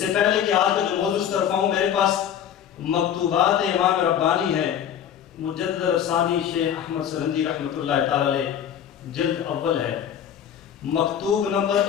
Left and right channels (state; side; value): quieter; right; 9.4 dB